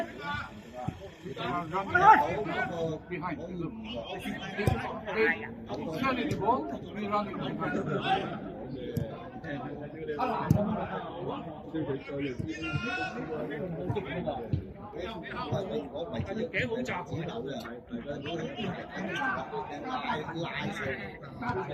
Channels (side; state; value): both; identical; correlation 1.00